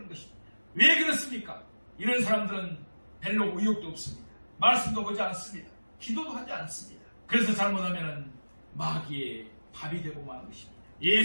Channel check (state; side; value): inverted; both; correlation -1.00